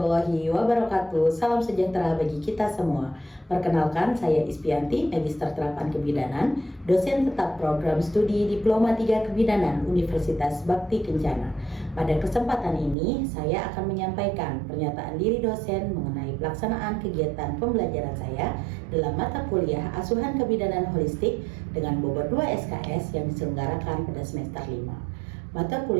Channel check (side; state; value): left; drops out; at 13.0 s